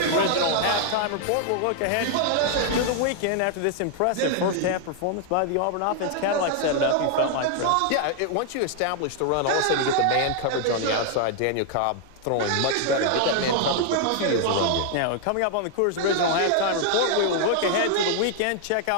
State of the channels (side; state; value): both; different; correlation 0.00